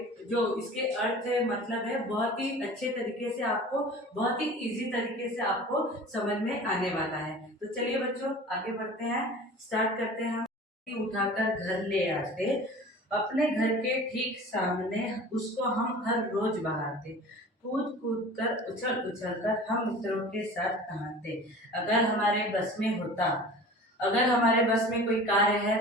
जो इसके अर्थ है मतलब है बहुत ही अच्छे तरीके से आपको बहुत ही इजी तरीके से आपको समझ में आने वाला है। तो चलिए बच्चों आगे बढ़ते हैं, स्टार्ट करते हैं। हम उठाकर घर ले आते, अपने घर के ठीक सामने उसको हम हर रोज बहाते, कूद कूद कर उछल उछल कर हम मित्रों के साथ नहाते। अगर हमारे बस में होता, अगर हमारे बस में कोई कार्य है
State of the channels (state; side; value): normal; both; correlation 0.40